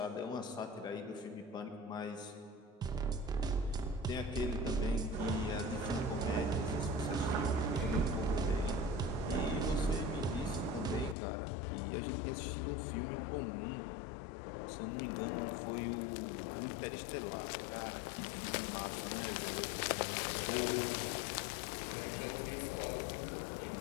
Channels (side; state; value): right; drops out; at 11.2 s